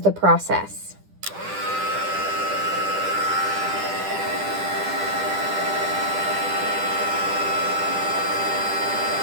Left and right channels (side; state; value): left; late; 10 ms